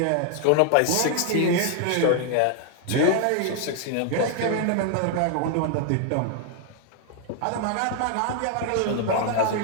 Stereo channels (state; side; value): different; both; correlation 0.00